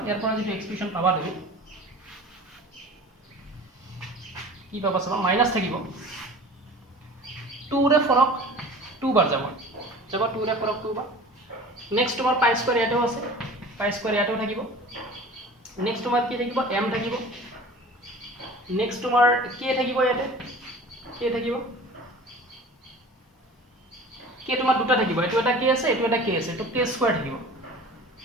ইয়াৰ পৰা যেটো এক্সপ্ৰেছন পাবা তুমি কি পাবা চাবা মাইনাস থাকিব 2 ৰে ফৰক 2 বাৰ যাব 2 ৰে ফৰক 2 বাৰ নেক্সট তোমাৰ π² ইয়াতেও আছে π² ইয়াতেও থাকিব নেক্সট তোমাৰ কি থাকিব m থাকিব নেক্সট তোমাৰ k থাকিব ইয়াতে k থাকিব k তোমাৰ দুটা থাকিব এটো এটা k আছে এটো এটা k আছে তো k² থাকিব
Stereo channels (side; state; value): both; normal; correlation 0.41